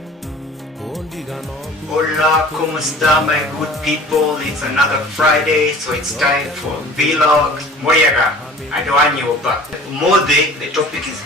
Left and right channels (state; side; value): normal; both; correlation 0.45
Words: Hola, ¿cómo está, my good people? It's another Friday, so it's time for vlog. Moyaga, I don't want you back. Mode, the topic is